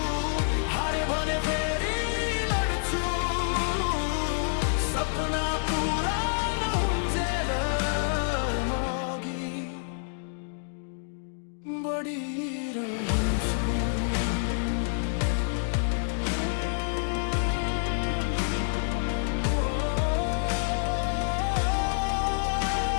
हारे भने फेरि लड्छु। सपना पुरा नहुन्जेल म अघि बढिरहन्छु।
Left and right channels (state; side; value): silent; right; digital silence